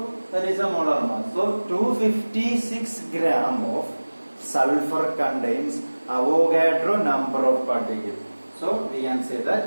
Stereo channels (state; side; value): inverted; both; correlation -1.00